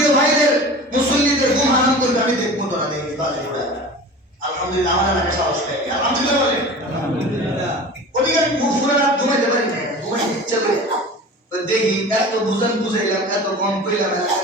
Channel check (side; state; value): both; normal; correlation 0.37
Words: ভাইদের মুসল্লিদের ঘুম হারাম করবে, আমি দেখবো তোরা দেখবি বাজে ফুটা। আলহামদুলিল্লাহ আমার এলাকায় সাহস পাই, আলহামদুলিল্লাহ বলে আলহামদুলিল্লাহ। ওদিকে আমি ফুলে রাত ঘুমাইতে পারি না, ঘুমাই ইচ্ছা করে দেখি এত বুঝাইলাম, এত কম কইলাম,